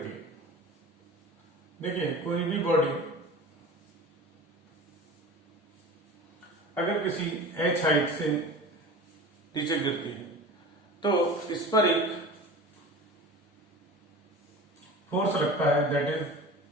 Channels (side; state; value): both; normal; correlation 0.36